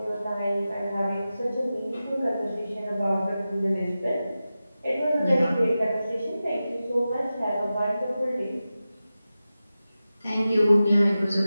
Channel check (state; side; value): inverted; both; correlation -0.94